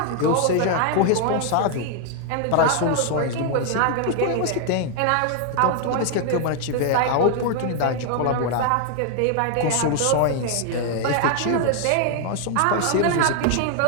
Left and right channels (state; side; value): different; both; correlation 0.00